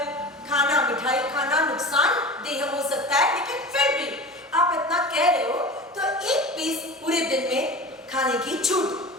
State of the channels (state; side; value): normal; both; correlation 0.34